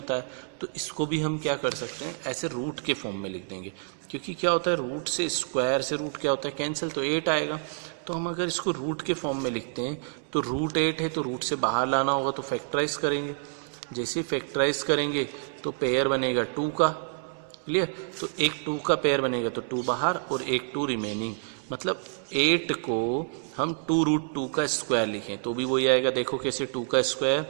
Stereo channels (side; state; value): left; silent; digital silence